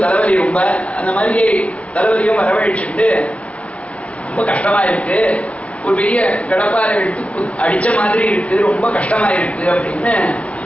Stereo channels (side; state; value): right; late; 0.064 ms